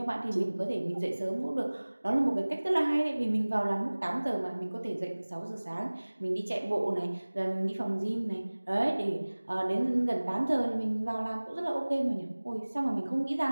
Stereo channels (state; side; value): inverted; both; correlation -1.00